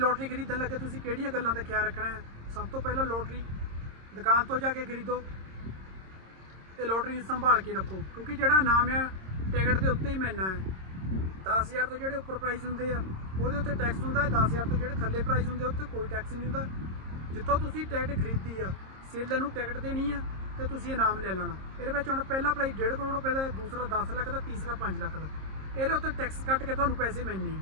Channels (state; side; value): late; left; 26 ms